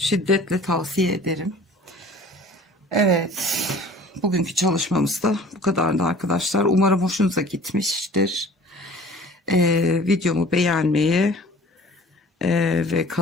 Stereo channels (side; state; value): both; normal; correlation 0.47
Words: tavsiye ederim. Evet. Bugünkü çalışmamız da bu kadardı arkadaşlar. Umarım hoşunuza gitmiştir. Videomu beğenmeyi ve